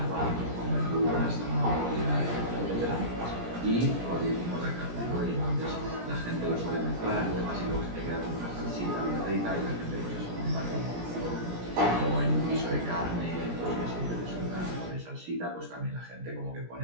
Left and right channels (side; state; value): left; late; 17 ms